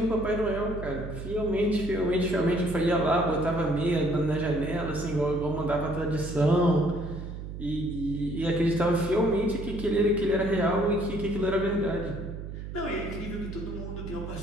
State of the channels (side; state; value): right; noise; hum, 9 dB below the sound